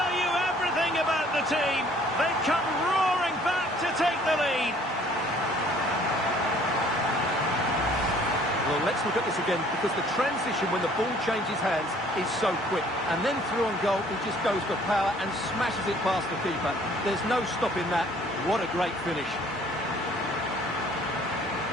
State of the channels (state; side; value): normal; both; correlation 0.57